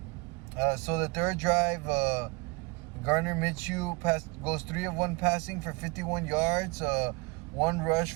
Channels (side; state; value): left; quieter; 26.0 dB